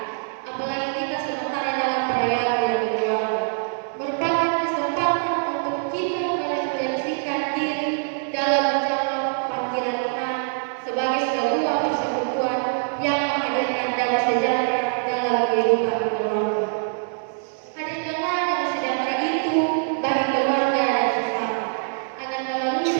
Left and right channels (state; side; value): silent; left; 63 dB below the other